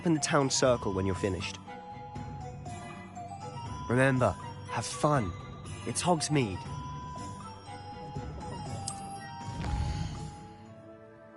in the town circle when you're finished. Remember, have fun. It's Hogsmeade.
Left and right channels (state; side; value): identical; both; correlation 1.00